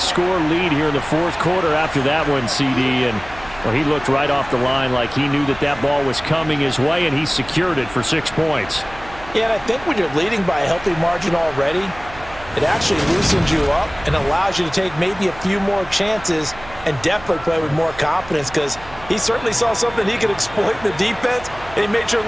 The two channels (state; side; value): noise; right; hum, 18 dB below the sound